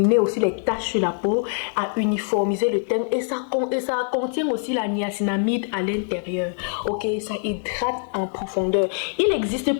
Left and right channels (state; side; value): silent; right; 62 dB below the other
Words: aussi les taches sur la peau, à uniformiser le teint et ça contient aussi la niacinamide à l'intérieur. Ok, ça hydrate en profondeur. Il existe